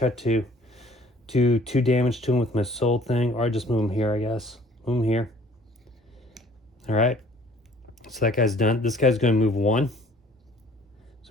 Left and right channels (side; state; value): both; normal; correlation 0.55